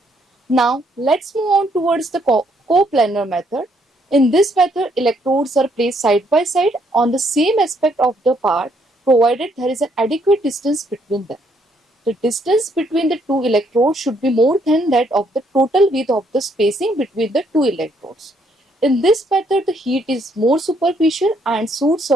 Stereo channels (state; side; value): normal; both; correlation 0.70